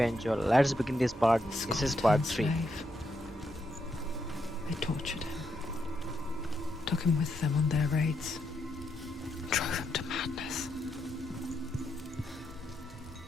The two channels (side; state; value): both; normal; correlation 0.81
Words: Let's begin this part. a This is part scorn-turned 3. slave. They tortured him, took him with them on their raids, drove him to madness,